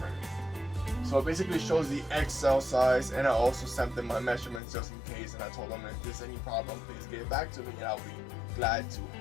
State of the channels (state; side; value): drops out; right; at 4.6 s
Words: So it basically shows the XL size, and I also sent them my measurements just in case, and I told them if there's any problem, please get back to me and I'll be glad to